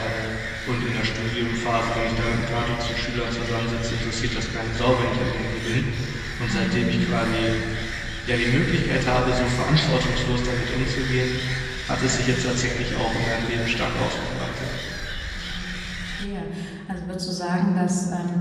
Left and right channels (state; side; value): identical; both; correlation 1.00